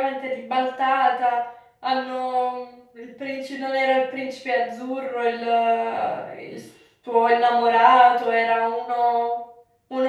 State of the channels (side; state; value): both; identical; correlation 1.00